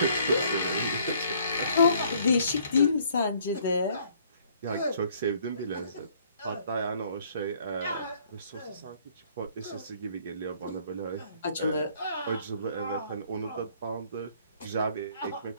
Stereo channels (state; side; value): inverted; both; correlation -0.61